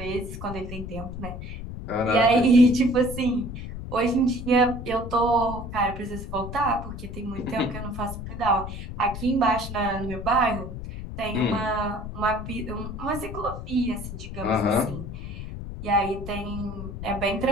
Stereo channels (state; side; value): noise; left; rumble, 8 dB below the sound